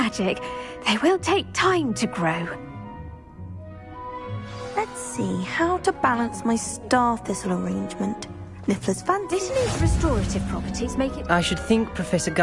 they will take time to grow. Let's see how to balance my star thistle arrangement. Niffler's fancy. Dittany's restorative properties make it... I should think Professor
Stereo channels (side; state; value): both; identical; correlation 1.00